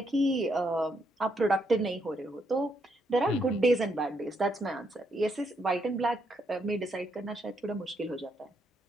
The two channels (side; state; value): both; normal; correlation 0.77